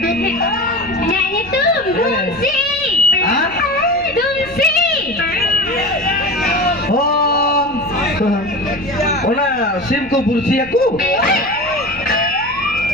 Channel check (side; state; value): right; noise; rumble, 20 dB below the sound